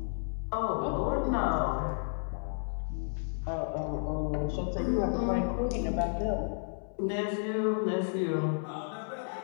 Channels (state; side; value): silent; right; 56 dB below the other